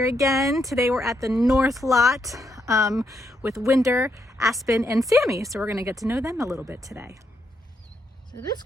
again. Today we're at the North Lot with Wynder, Aspen, and Sammy. So we're going to get to know them a little bit today. So this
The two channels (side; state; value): both; normal; correlation 0.78